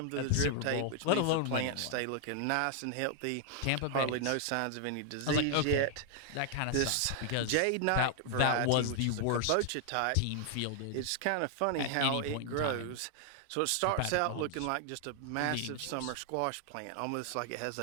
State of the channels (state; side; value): different; both; correlation 0.00